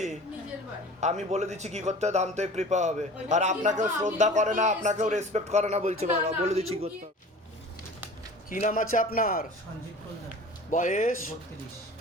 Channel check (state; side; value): normal; both; correlation 0.41